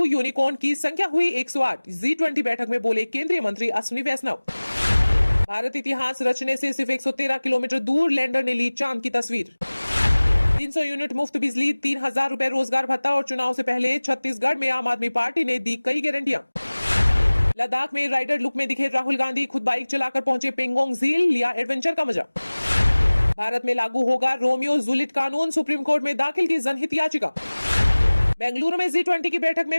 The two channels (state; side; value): inverted; both; correlation -1.00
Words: यूनिकॉर्न की संख्या हुई 108। G20 बैठक में बोले केंद्रीय मंत्री अश्विनी वैष्णव। भारत इतिहास रचने से सिर्फ 113 किलोमीटर दूर लैंडर ने ली चांद की तस्वीर। 300 यूनिट मुफ्त बिजली, 3,000 रुपए रोजगार भत्ता और चुनाव से पहले छत्तीसगढ़ में आम आदमी पार्टी ने दी कई गारंटियां। लद्दाख में राइडर लुक में दिखे राहुल गांधी, खुद बाइक चलाकर पहुंचे पेंगोंग झील, लिया एडवेंचर का मजा। भारत में लागू होगा रोमियो जूलियट कानून, सुप्रीम कोर्ट में दाखिल की जनहित याचिका। बेंगलुरु में G20 की बैठक में